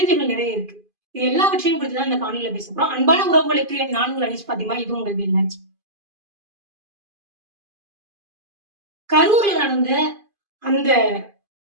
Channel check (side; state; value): left; late; 2.5 ms